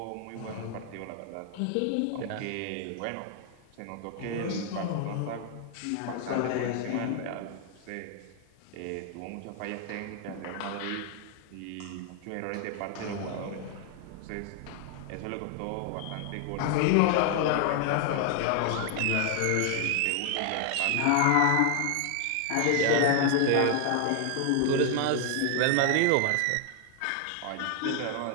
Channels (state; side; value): different; both; correlation 0.00